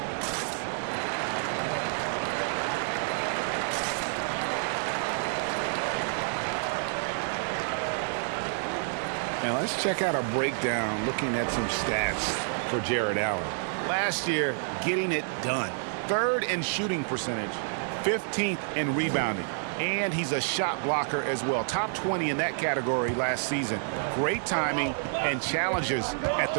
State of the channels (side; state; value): left; silent; 59 dB below the other